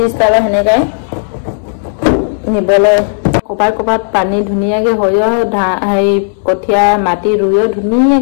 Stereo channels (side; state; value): right; silent; digital silence